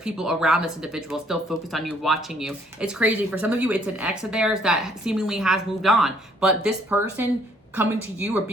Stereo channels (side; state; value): both; normal; correlation 0.64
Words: around this individual still focused on you, watching you. It's crazy. For some of you, it's an ex of theirs that seemingly has moved on. But this person coming to you or